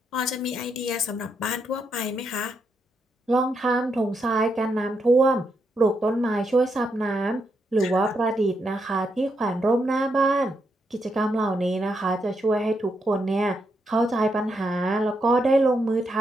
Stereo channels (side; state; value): both; normal; correlation 0.80